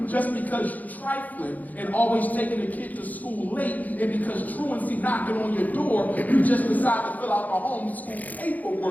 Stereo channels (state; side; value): late; right; 0.080 ms